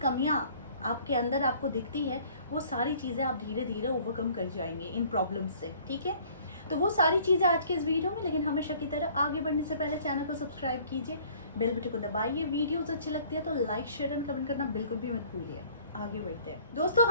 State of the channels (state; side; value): inverted; both; correlation -0.55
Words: कमियाँ आपके अंदर आपको दिखती है, वो सारी चीज़ें आप धीरे धीरे ओवरकम कर जाएंगे इन प्रॉब्लम्स से। ठीक है, तो वो सारी चीज़ें आज के इस वीडियो में। लेकिन हमेशा की तरह आगे बढ़ने से पहले चैनल को सब्सक्राइब कीजिए, बेल बटन को दबाइए। वीडियोस अच्छी लगती है तो लाइक, शेयर एंड कमेंट करना बिल्कुल भी मत भूलिए। आगे बढ़ते हैं दोस्तों।